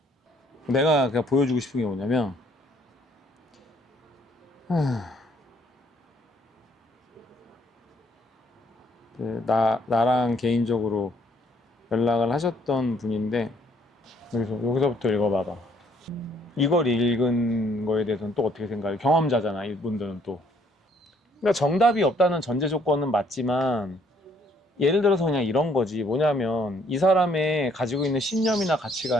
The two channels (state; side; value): normal; both; correlation 0.65